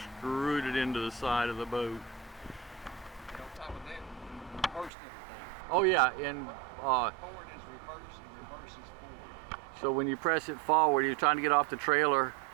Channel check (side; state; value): left; drops out; at 4.9 s